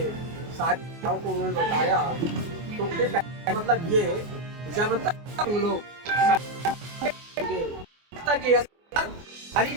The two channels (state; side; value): late; left; 24 ms